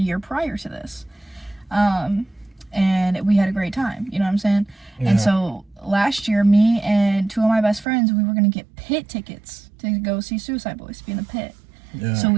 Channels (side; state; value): left; drops out; at 7.9 s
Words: prior to this. And we had a great time, you know what I'm saying? Yeah. And so last year, me and two of my best friends, we were going to get pit tickets to go see Suicide Boys, be in the pit. Yeah. So